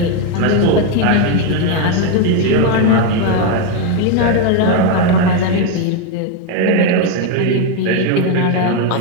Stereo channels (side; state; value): both; different; correlation 0.02